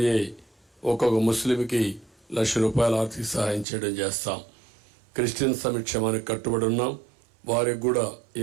ఒక్కొక్క ముస్లింకి ₹1,00,000 ఆర్థిక సహాయం చేయడం చేస్తాం. క్రిస్టియన్ సంక్షేమానికి కట్టుబడి ఉన్నాం. వారికి కూడా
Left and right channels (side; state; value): left; drops out; at 3.7 s